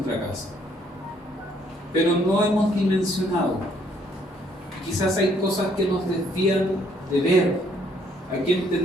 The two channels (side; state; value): both; normal; correlation 0.66